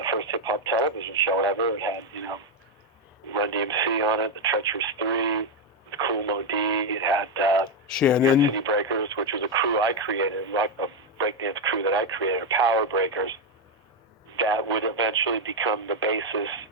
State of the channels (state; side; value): normal; both; correlation 0.04